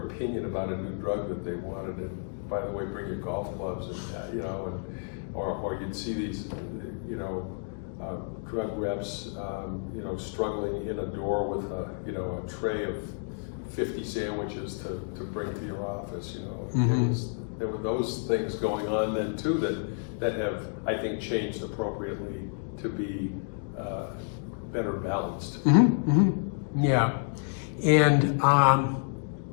opinion about a new drug that they wanted, and by the way, bring your golf clubs, and or you'd see these drug reps struggling in a door with a tray of 50 sandwiches to bring to your office. Mm-hmm. There were those things going on then too that have, I think, changed appropriately to be better balanced. Mm-hmm. Mm-hmm. Yeah, and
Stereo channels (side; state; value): right; silent; 58 dB below the other